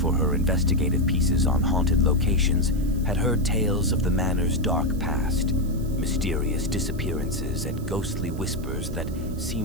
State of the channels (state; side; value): noise; right; hiss, 22 dB below the sound